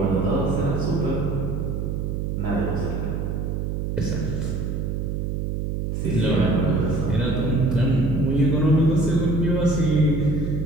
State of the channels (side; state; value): right; noise; hum, 2 dB below the sound